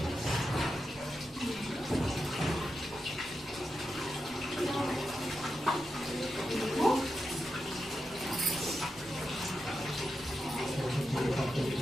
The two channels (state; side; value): normal; both; correlation 0.88